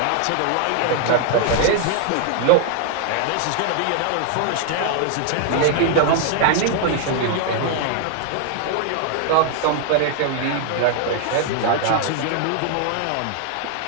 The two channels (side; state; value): both; different; correlation 0.00